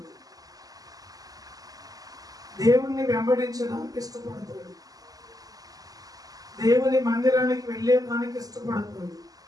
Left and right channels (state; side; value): late; left; 0.17 ms